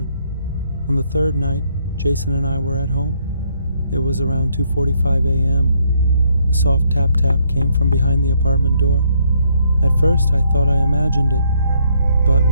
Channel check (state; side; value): inverted; both; correlation -0.71